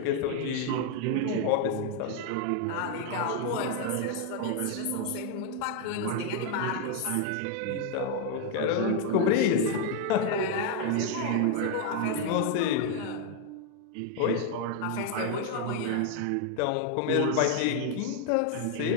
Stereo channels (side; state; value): both; different; correlation 0.01